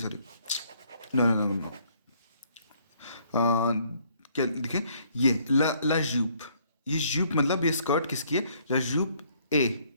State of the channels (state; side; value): inverted; both; correlation -0.65